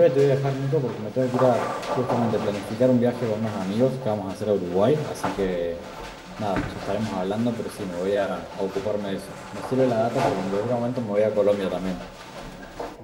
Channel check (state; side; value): identical; both; correlation 1.00